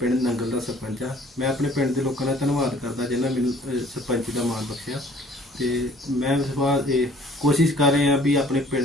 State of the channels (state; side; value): normal; both; correlation 0.55